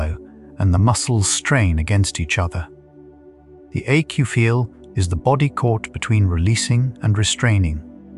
and the muscles strain against each other. The ache you feel is the body caught between releasing and restraining.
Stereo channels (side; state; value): both; identical; correlation 1.00